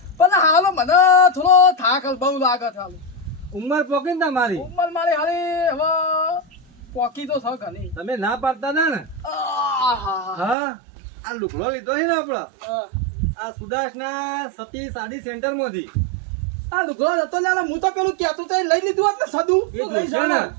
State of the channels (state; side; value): drops out; left; at 10.6 s